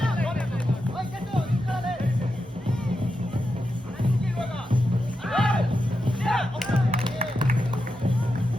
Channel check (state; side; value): normal; both; correlation 0.88